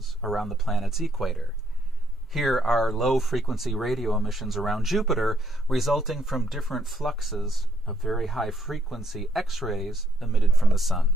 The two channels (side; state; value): both; normal; correlation 0.71